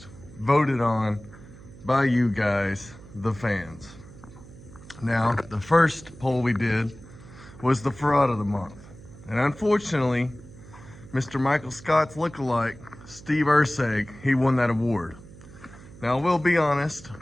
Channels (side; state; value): right; noise; hum, 19 dB below the sound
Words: voted on by you guys, the fans. Now, the first poll we did was the fraud of the month, and unfortunately, Mr. Michael Scott's lookalike, Steve Urseg, he won that award. Now, we'll be honest,